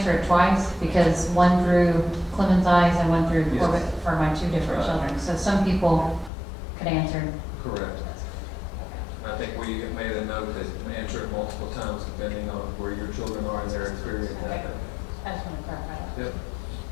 it twice? Because one through Clemens Eyes and one through Corbett for my 2 different children. So some people could answer. Correct. I think we have made a note that answer it multiple times depending on where your children are in their experience. Okay. I just want to clarify that. Yep.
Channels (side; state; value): right; drops out; at 6.3 s